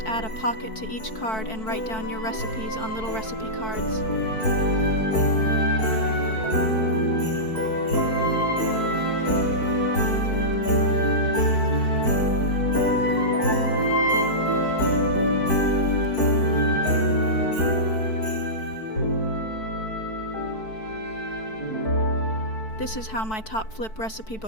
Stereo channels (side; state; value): right; late; 4.6 ms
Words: add a pocket to each card and write down your recipes on little recipe cards. This is how my top flip recipe